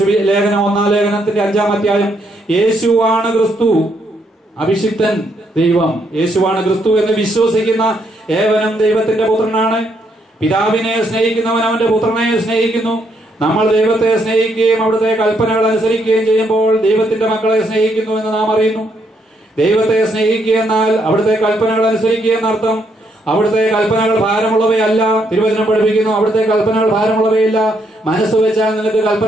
ലേഖനം 1-ാം ലേഖനത്തിന്റെ 5-ാം അധ്യായം. യേശുവാണ് ക്രിസ്തു, അഭിഷിക്തൻ ദൈവം. യേശുവാണ് ക്രിസ്തു എന്ന് വിശ്വസിക്കുന്ന ഏവനും ദൈവത്തിന്റെ പുത്രനാണ്. പിതാവിനെ സ്നേഹിക്കുന്നവൻ അവന്റെ പുത്രനെ സ്നേഹിക്കുന്നു. നമ്മൾ ദൈവത്തെ സ്നേഹിക്കുകയും അവിടുത്തെ കൽപ്പനകൾ അനുസരിക്കുകയും ചെയ്യുമ്പോൾ ദൈവത്തിന്റെ മക്കളെ സ്നേഹിക്കുന്നു എന്ന് നാം അറിയുന്നു. ദൈവത്തെ സ്നേഹിക്കുക എന്നാൽ അവിടുത്തെ കൽപ്പനകൾ അനുസരിക്കുക എന്നർത്ഥം. അവിടുത്തെ കൽപ്പനകൾ ഭാരമുള്ളവയല്ല. തിരുവചനം പഠിപ്പിക്കുന്നു അവിടുത്തെ കൽപ്പനകൾ ഭാരമുള്ളവയല്ല. മനസ്സ് വെച്ചാൽ നിനക്ക്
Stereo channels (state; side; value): normal; both; correlation 0.74